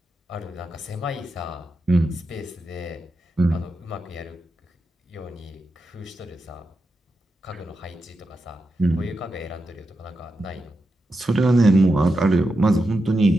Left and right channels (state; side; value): normal; both; correlation 0.88